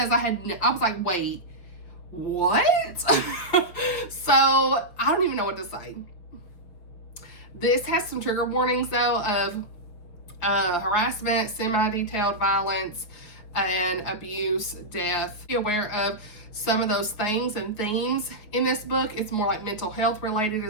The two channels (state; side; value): late; right; 5.8 ms